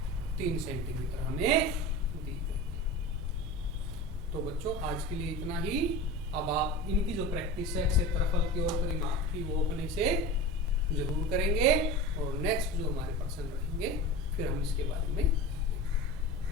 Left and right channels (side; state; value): both; normal; correlation 0.31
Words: 3 सेंटीमीटर हमें दी गई। तो बच्चों आज के लिए इतना ही। अब आप इनकी जो प्रैक्टिस है क्षेत्रफल की और परिमाप की, वो अपने से जरूर करेंगे, और नेक्स्ट जो हमारे पर्सन रहेंगे फिर हम इसके बारे में।